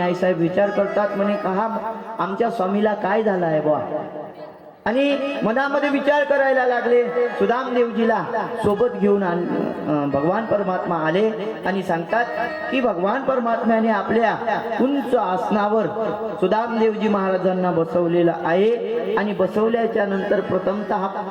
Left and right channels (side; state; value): both; identical; correlation 1.00